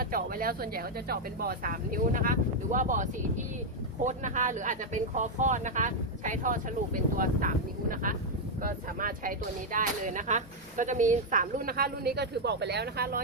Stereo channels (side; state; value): both; normal; correlation 0.00